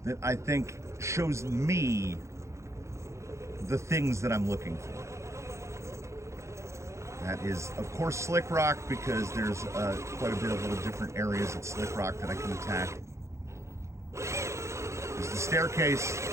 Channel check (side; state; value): left; late; 0.14 ms